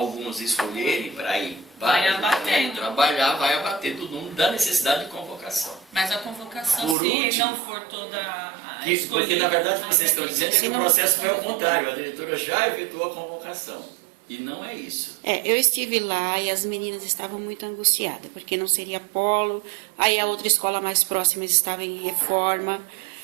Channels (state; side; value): drops out; left; at 7.0 s